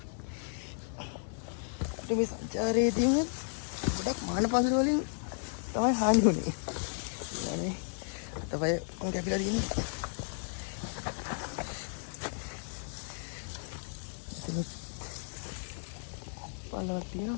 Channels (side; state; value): right; silent; digital silence